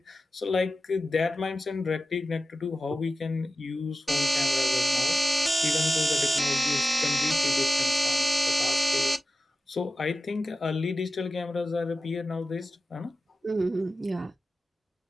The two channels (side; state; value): both; normal; correlation 0.93